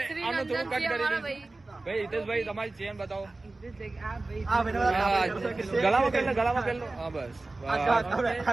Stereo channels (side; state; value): left; quieter; 3.2 dB